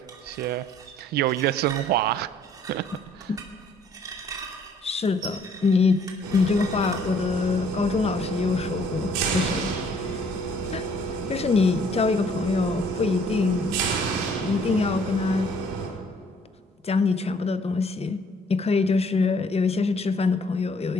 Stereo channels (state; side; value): normal; both; correlation 0.60